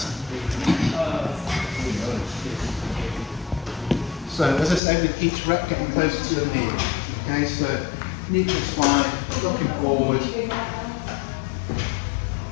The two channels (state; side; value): drops out; right; at 4.8 s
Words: So as I said, with each rep getting closer to the knee. Okay, so neutral spine, looking forward.